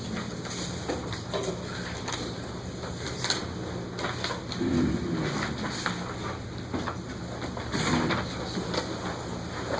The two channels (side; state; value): both; identical; correlation 1.00